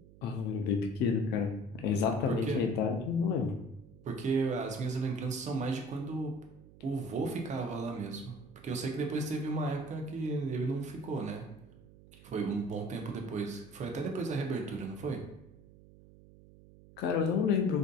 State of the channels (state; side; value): noise; right; hum, 21 dB below the sound